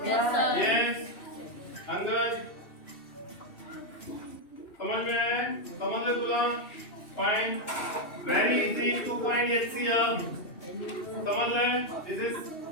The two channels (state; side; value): late; right; 2.7 ms